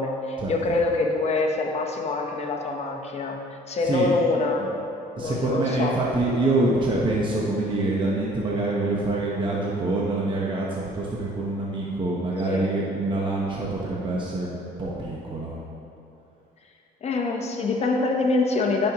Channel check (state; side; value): normal; both; correlation 0.54